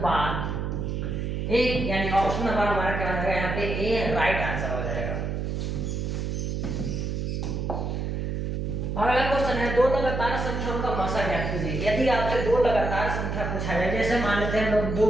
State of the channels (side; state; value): right; noise; hum, 2 dB below the sound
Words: 1, यानी ऑप्शन नंबर हमारा क्या हो जाएगा यहाँ पे ए राइट आंसर हो जाएगा। अगला क्वेश्चन है दो लगातार संख्याओं का मसा ज्ञात कीजिए। यदि आपसे दो लगातार संख्या पूछा जाए, जैसे मान लेते हैं हम लोग